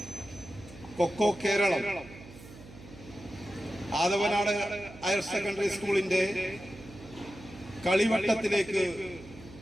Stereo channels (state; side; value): noise; right; hum, 18 dB below the sound